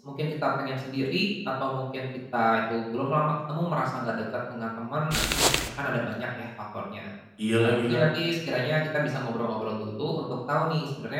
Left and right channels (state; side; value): identical; both; correlation 1.00